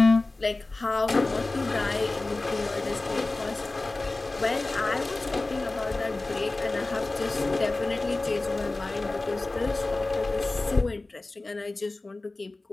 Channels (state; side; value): quieter; right; 3.1 dB